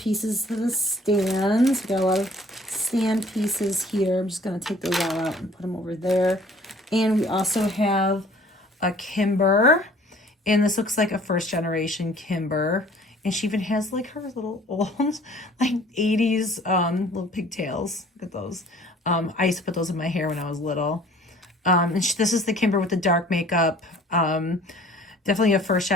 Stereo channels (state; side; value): normal; both; correlation 0.53